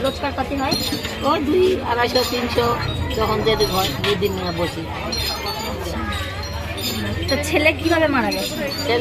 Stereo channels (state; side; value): identical; both; correlation 1.00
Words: রোজগার পাতি হয়? ওই 200-250-300 যখন যেতে হয়, 2 দিন বসি। তো ছেলে কিভাবে মারা গেছে?